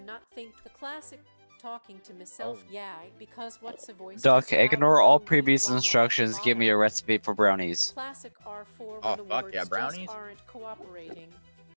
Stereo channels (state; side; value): inverted; both; correlation -1.00